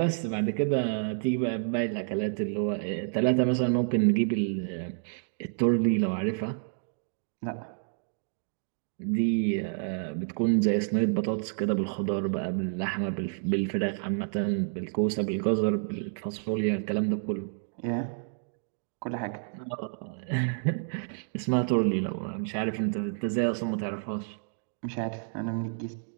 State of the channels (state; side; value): silent; left; digital silence